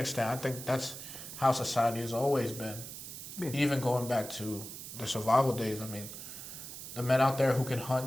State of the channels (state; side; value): noise; right; hiss, 10 dB below the sound